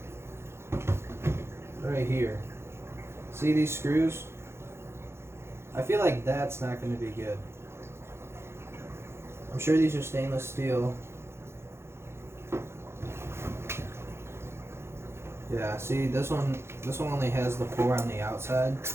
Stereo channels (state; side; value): late; left; 0.12 ms